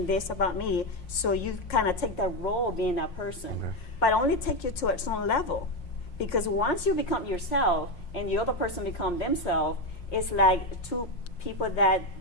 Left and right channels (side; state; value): right; late; 5.6 ms